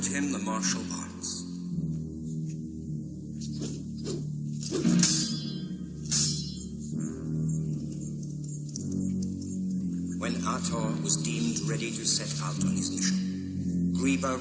him the martial arts. When Ator was deemed ready to set out on his mission, Griba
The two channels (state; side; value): identical; both; correlation 1.00